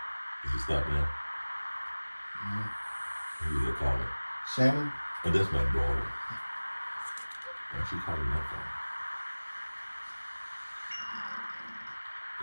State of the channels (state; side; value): inverted; both; correlation -1.00